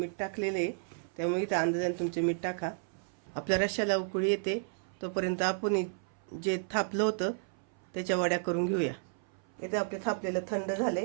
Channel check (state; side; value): silent; left; 56 dB below the other